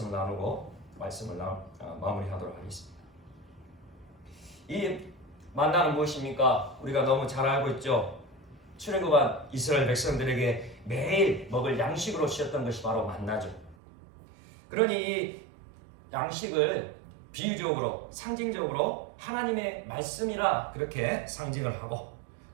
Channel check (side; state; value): left; drops out; at 13.8 s